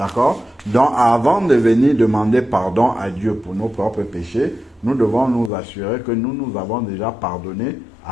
Donc, avant de venir demander pardon à Dieu pour nos propres péchés, nous devons nous assurer que nous avons déjà pardonné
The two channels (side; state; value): right; drops out; at 5.5 s